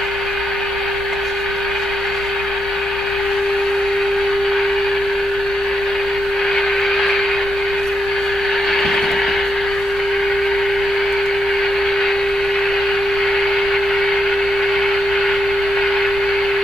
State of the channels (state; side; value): normal; both; correlation 0.81